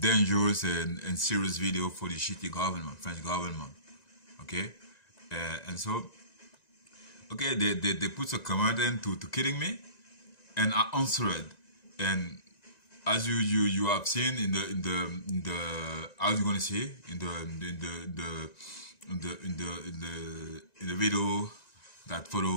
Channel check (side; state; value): right; late; 1.9 ms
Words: and serious video for the shitty government, French government, okay? And so, okay, they put a comment in to killing me, and I answered, and as you have seen in the how you gonna say in the video that